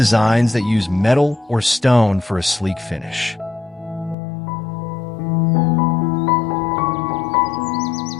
that use metal or stone for a sleek finish.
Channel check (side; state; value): right; drops out; at 4.2 s